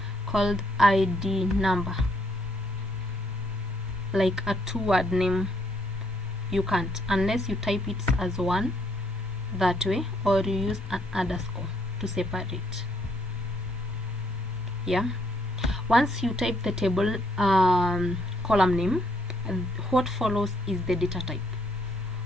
called ID number, like a two-word name. You can't, unless you type it as one that way, or you use an underscore to separate. Yeah, once you type the table column name, what follows is the data type.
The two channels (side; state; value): both; normal; correlation 0.72